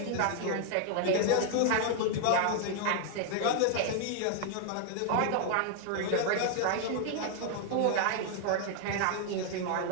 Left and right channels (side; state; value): both; different; correlation 0.00